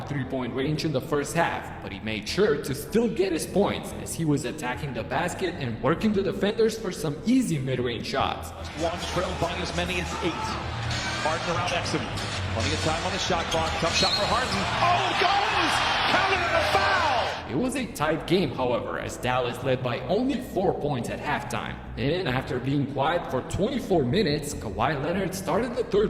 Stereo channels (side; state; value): both; identical; correlation 1.00